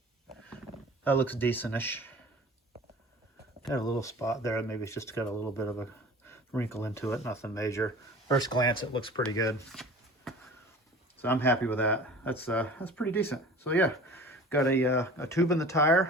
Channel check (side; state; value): both; normal; correlation 0.42